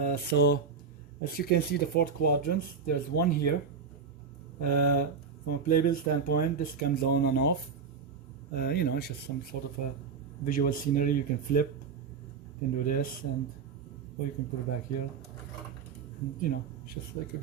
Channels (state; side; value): quieter; left; 5.7 dB